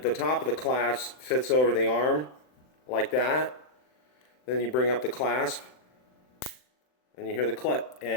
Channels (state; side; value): late; right; 39 ms